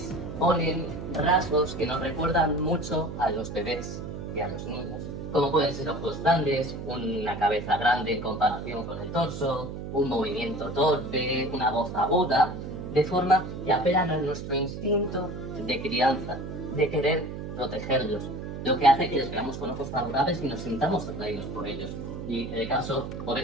ponen rasgos que nos recuerdan mucho a los bebés y a los niños, como pueden ser ojos grandes, una cabeza grande en comparación con el torso, un movimiento torpe, una voz aguda, de forma que apelan a nuestro instinto de crianza, de querer protegerlos, lo que hace que les veamos con ojos favorables y nos sintamos atraídos por ellos. Y el caso por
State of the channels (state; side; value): noise; right; hum, 7 dB below the sound